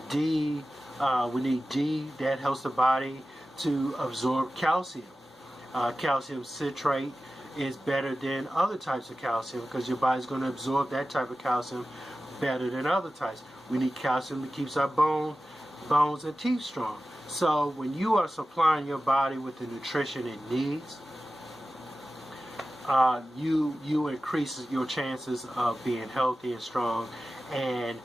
D. We need D. That helps the body to absorb calcium. Calcium citrate is better than other types of calcium because your body's going to absorb that type of calcium better than other types. We need calcium that keeps our bones and teeth strong. So when you are supplying your body with the nutrition it needs, you increase your chances of being healthy and strong and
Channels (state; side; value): normal; both; correlation 0.95